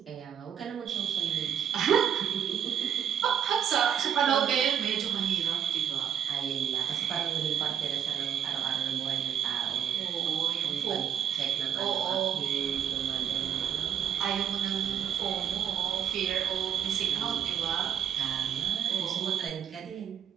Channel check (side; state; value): left; quieter; 8.8 dB